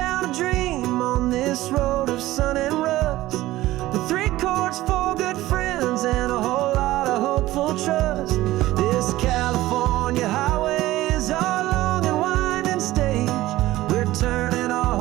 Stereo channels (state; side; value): quieter; left; 16.6 dB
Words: a dream on this road of sun and rust, with 3 chords, 4 good friends, and a whole lot of hopeful trust. This California highway is our long and winding stage. We're turning our